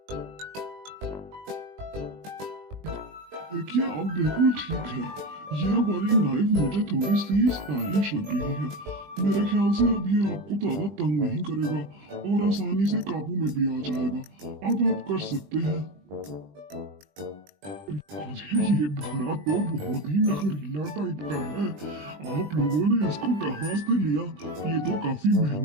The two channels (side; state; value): left; late; 20 ms